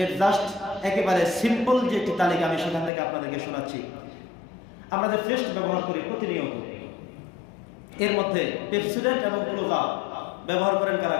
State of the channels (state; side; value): drops out; right; at 2.9 s